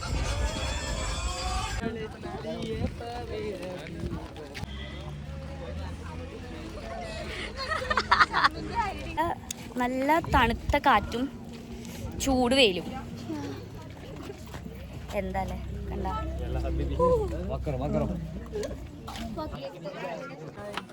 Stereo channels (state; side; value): identical; both; correlation 1.00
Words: നല്ല തണുത്ത കാറ്റും ചൂട് വെയിലും എന്താല്ലേ കണ്ട